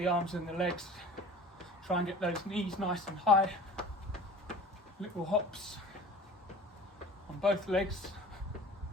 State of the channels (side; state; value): both; normal; correlation 0.42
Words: arms and the legs. Try and get those knees nice and high. Little hops on both legs.